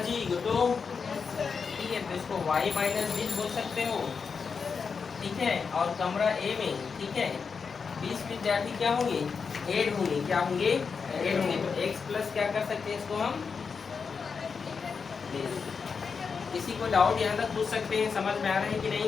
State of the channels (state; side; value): quieter; right; 5.5 dB